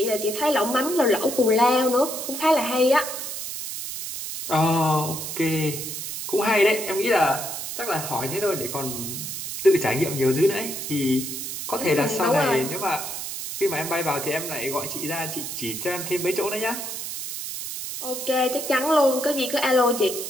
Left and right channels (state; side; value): noise; right; hiss, 6 dB below the sound